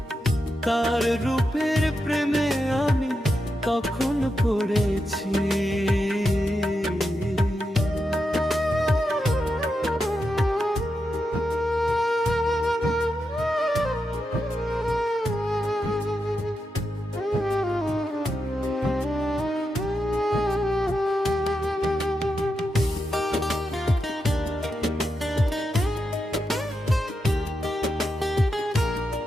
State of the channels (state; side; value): normal; both; correlation 0.86